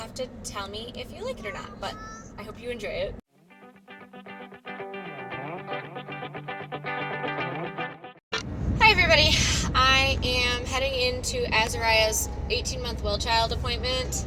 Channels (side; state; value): both; identical; correlation 1.00